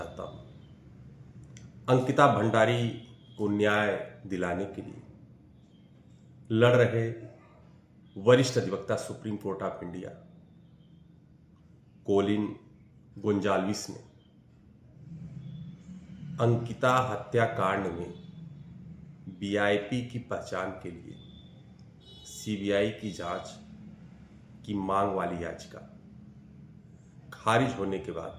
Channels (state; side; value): identical; both; correlation 1.00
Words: हूँ। अंकिता भंडारी को न्याय दिलाने के लिए लड़ रहे वरिष्ठ अधिवक्ता supreme court of India Colin Gonsalves ने अंकिता हत्याकांड में वीआईपी की पहचान के लिए सीबीआई की जांच की मांग वाली याचिका खारिज होने के